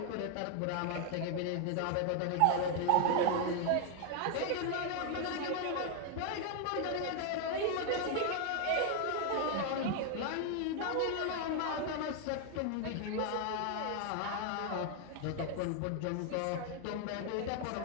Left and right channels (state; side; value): different; both; correlation 0.00